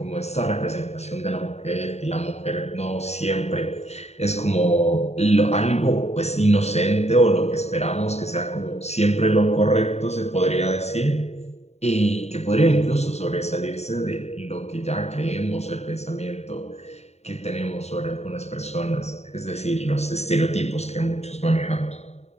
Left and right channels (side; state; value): right; late; 0.32 ms